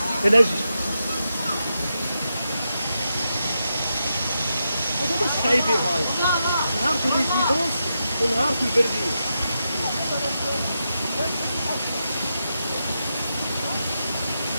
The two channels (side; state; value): both; inverted; correlation -0.86